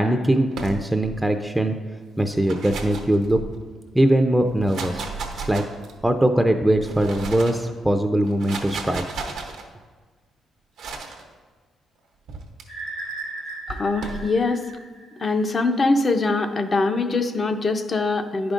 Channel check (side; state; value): both; normal; correlation 0.87